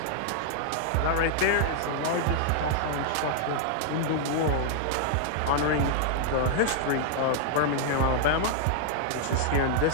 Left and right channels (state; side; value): different; both; correlation -0.01